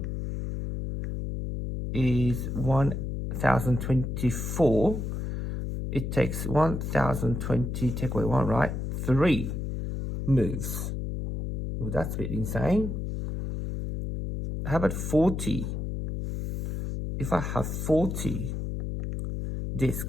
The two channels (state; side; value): noise; left; hum, 3 dB below the sound